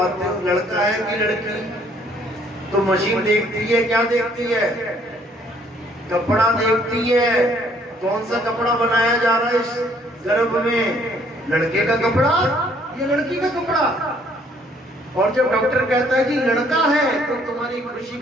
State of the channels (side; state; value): both; normal; correlation 0.63